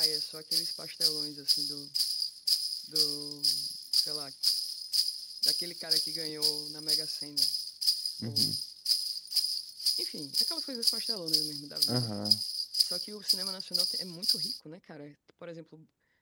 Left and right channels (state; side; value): identical; both; correlation 1.00